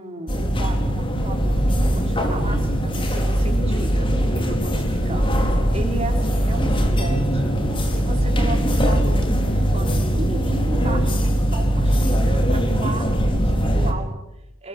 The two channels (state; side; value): normal; both; correlation 0.87